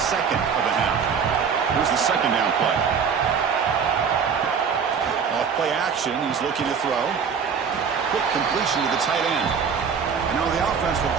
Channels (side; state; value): left; quieter; 6.5 dB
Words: of the half. Here's the second down play. Off play action, he's looking to throw. Quick completion to the tight end. And now the offense will